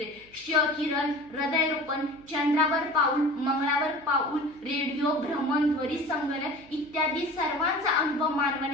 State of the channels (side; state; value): right; noise; hum, 26 dB below the sound